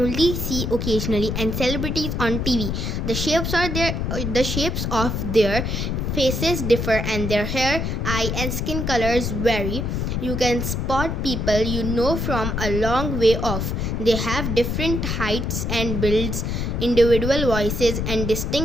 see occasionally, and celebrities on TV. The shapes of their faces differ, and their hair, eye, and skin colors vary. You can spot people you know from a long way off. They have different heights and builds, individual voices, and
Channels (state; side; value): noise; left; rumble, 1 dB below the sound